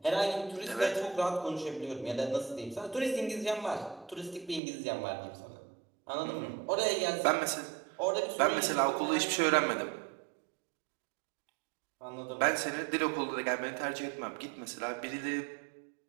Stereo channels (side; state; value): left; drops out; at 4.6 s